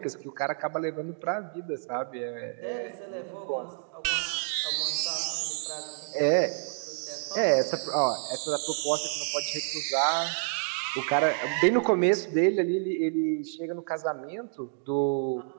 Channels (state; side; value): silent; left; digital silence